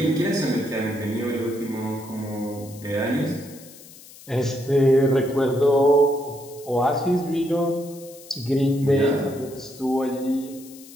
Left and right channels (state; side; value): noise; left; hiss, 20 dB below the sound